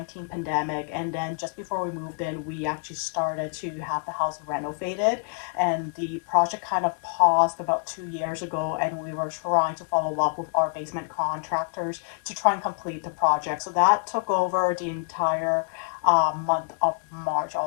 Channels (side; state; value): right; quieter; 38.9 dB